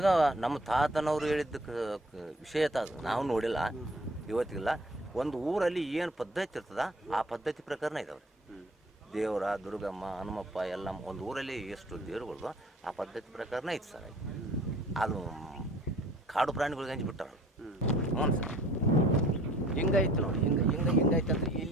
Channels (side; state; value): both; normal; correlation 0.54